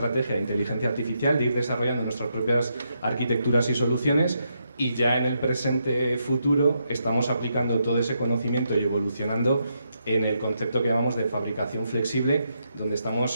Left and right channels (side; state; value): both; inverted; correlation -0.80